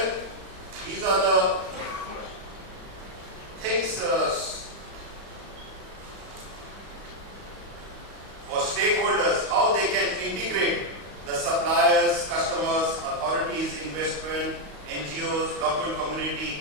these are the things for stakeholders, how they can integrate the suppliers, customers, authorities, investment, NGOs, local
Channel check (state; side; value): late; left; 35 ms